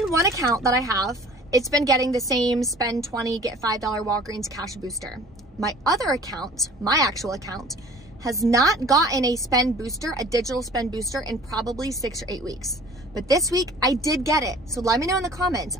one account that I have, it's been getting the same spend 20, get $5 Walgreens cash booster. My other account, my actual account, has not gotten a spend booster, a digital spend booster, in probably 6 or 8 weeks. But this week I did get it. So let me know in the comments,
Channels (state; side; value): normal; both; correlation 0.48